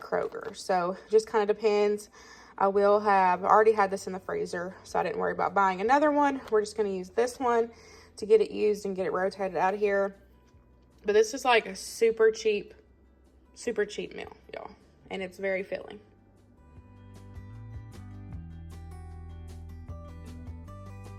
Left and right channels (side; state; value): both; identical; correlation 1.00